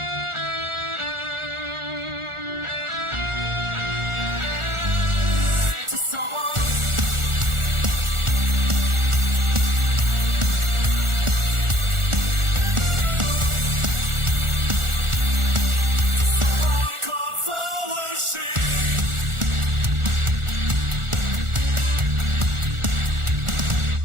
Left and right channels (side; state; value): left; late; 1.4 ms